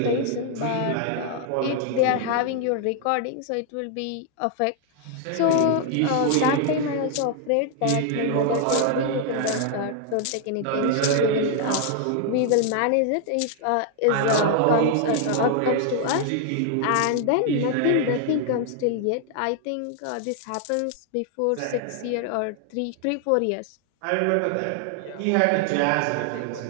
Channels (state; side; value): different; both; correlation 0.00